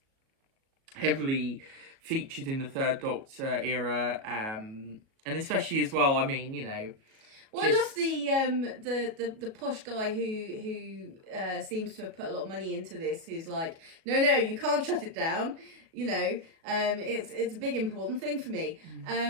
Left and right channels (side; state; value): left; late; 37 ms